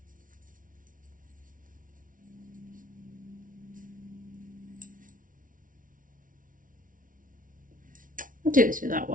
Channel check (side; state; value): left; late; 0.39 ms